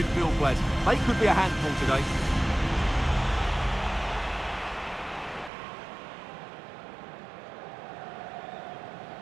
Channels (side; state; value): left; drops out; at 5.5 s